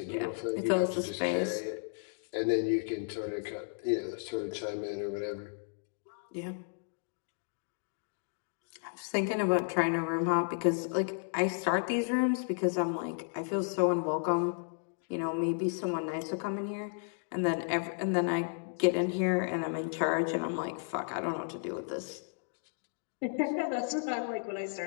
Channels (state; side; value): silent; right; digital silence